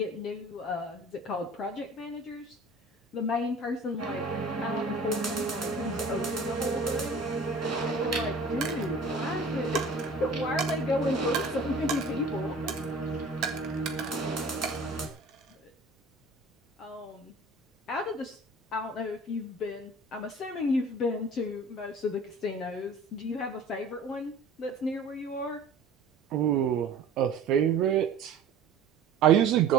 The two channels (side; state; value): left; quieter; 3.0 dB